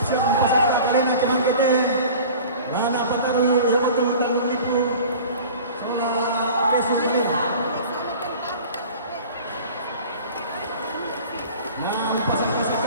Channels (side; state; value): both; inverted; correlation -0.41